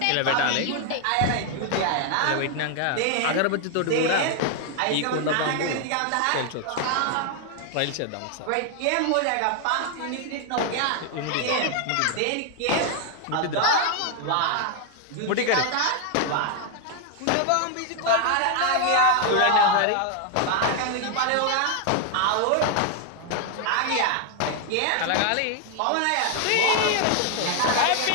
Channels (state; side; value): different; both; correlation 0.00